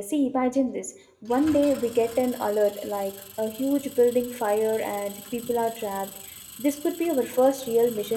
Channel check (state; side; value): identical; both; correlation 1.00